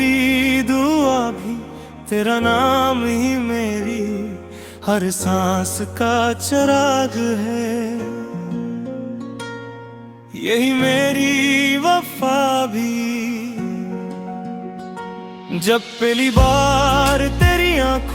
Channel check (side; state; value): both; identical; correlation 1.00